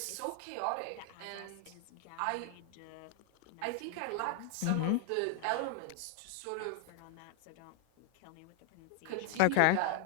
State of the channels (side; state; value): both; different; correlation 0.00